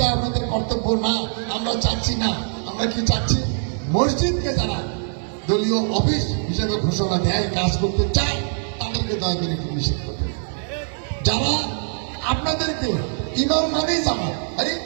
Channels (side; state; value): left; silent; digital silence